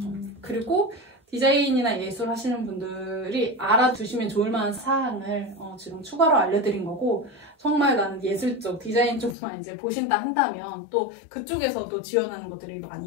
그리고 디자인이나 예술 하시는 분들이 알아두시면 좋을 만한 사항을 지금 추가로 알려드린 거고, 정말 나는 예술 쪽, 디자인 쪽만 이제 보신다 한다면 또 그쪽에서도 지원하는 것들이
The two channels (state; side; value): drops out; right; at 9.3 s